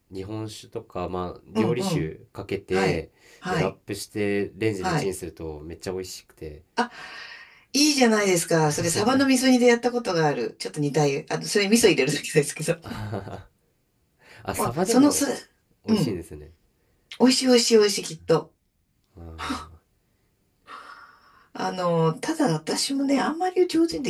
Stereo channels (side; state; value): both; identical; correlation 1.00